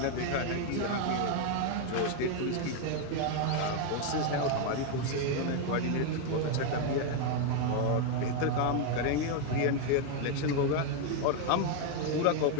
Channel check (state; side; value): different; both; correlation 0.01